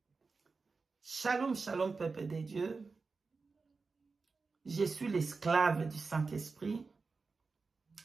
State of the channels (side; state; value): left; quieter; 4.3 dB